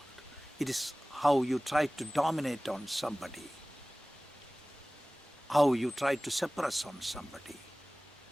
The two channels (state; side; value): normal; both; correlation 0.98